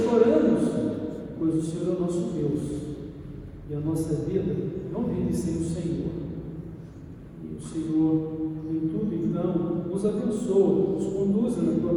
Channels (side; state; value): both; identical; correlation 1.00